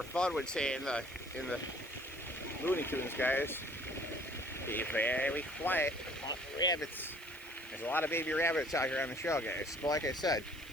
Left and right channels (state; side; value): noise; right; hiss, 20 dB below the sound